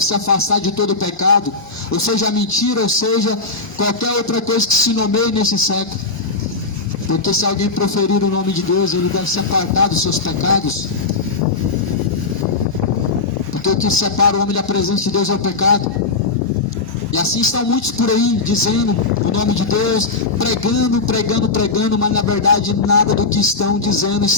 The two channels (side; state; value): right; quieter; 3.9 dB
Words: se afastar de todo pecado. Ou seja, mentira, ou seja, qualquer outra coisa que se nomeie nesse século. Porque se alguém proferir o nome de Deus, ele deve se apartar dos seus pecados. Porque o que separa o homem da presença de Deus é o pecado. E assim estão muitos por aí, dizendo o nome de Deus, pregando, mas na verdade nada do que estão dizendo